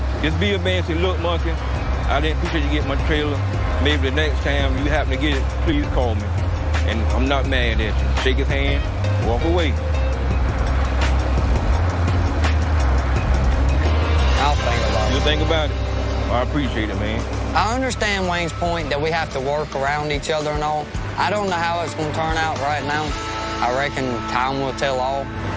Just be a man and say, look, Monkey, I didn't appreciate you getting my trailer. Maybe the next time you happen to get it, please call me. And I'm not mad at you. Shake his hand, walk away. I'll think about it. You think about it? I appreciate it, man. I understand Wayne's point that we have to work around each other and all. I don't know how it's going to turn out right now. I reckon time will tell all.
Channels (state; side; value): identical; both; correlation 1.00